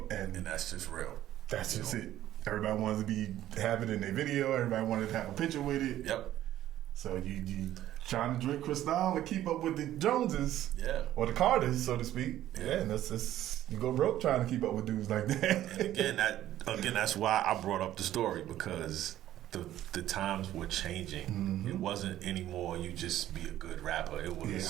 And that's just real. That's just it. Everybody wanted to have it in their video. Everybody wanted to have a picture with it. Yep. So you trying to drink Cristal and keep up with the Joneses, or the Carters, so to speak. Yeah, and that's you go broke trying to keep up with dudes like that. And again, that's why I brought up the story, because the times were changing. It wasn't anymore you just be a good rapper. It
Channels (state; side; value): quieter; left; 13.0 dB